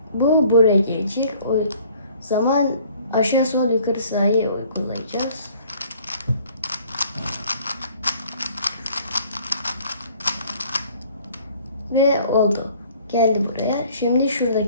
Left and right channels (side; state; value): both; inverted; correlation -0.56